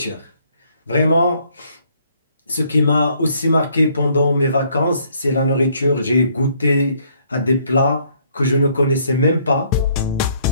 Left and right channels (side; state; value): both; inverted; correlation -0.66